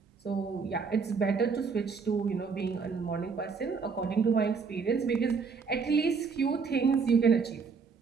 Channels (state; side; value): quieter; left; 5.3 dB